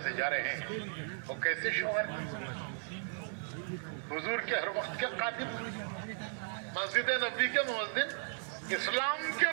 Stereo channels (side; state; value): left; silent; 54 dB below the other